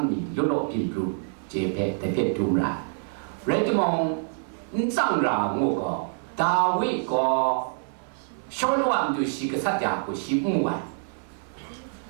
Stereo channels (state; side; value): silent; left; 61 dB below the other